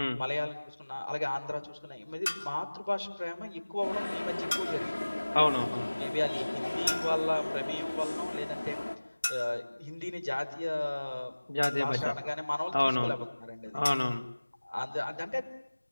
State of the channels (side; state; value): both; inverted; correlation -1.00